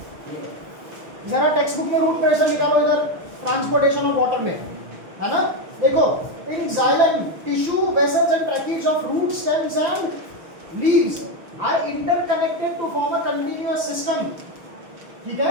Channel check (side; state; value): left; late; 6.3 ms